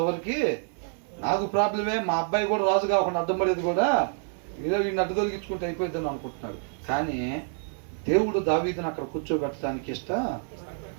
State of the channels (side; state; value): left; silent; 60 dB below the other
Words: వరకు నాకు ప్రాబ్లమే. మా అబ్బాయి కూడా రాజు కాకుండా అడ్డం పడేది కూడా ఏదో వీడిని అడ్డు తొలగించుకుంటే అయిపోద్దని అనుకుంటున్నాడు. కానీ దేవుడు దావీదుని అక్కడ కూర్చోబెట్టడానికి